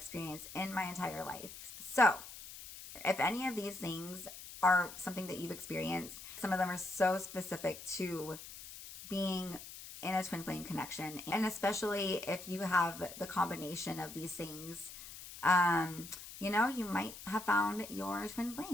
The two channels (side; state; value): left; noise; hiss, 13 dB below the sound